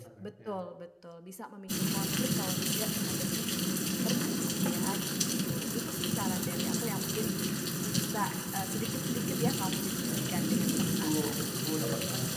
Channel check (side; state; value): both; identical; correlation 1.00